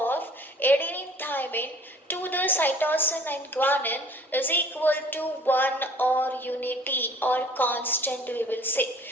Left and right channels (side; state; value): both; normal; correlation 0.51